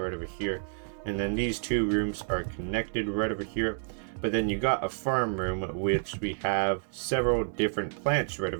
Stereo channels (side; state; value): left; silent; digital silence